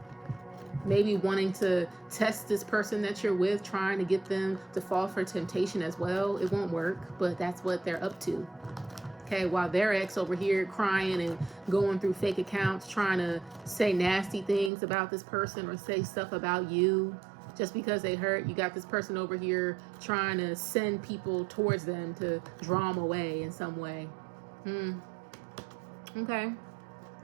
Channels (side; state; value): left; drops out; at 14.7 s